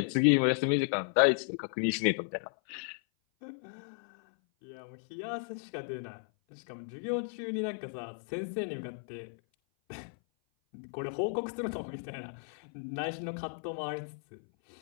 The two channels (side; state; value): right; silent; 55 dB below the other